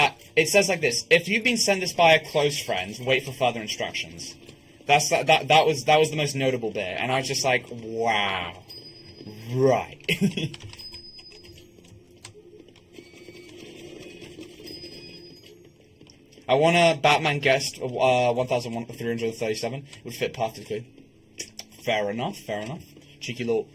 it says like this: "If you've been sent this by a close friend, wait for further instructions." That was the most notable bit, and I was just like, "Wow, right." I want a Batman guest 1,337. Would fit perfectly. Fair enough. Cheeky little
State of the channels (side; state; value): both; identical; correlation 1.00